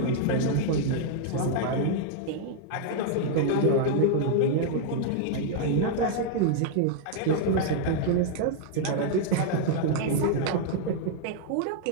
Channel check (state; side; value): different; both; correlation -0.01